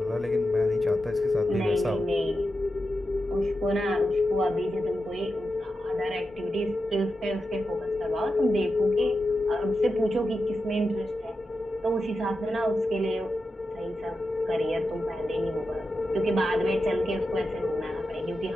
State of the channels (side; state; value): both; normal; correlation 0.90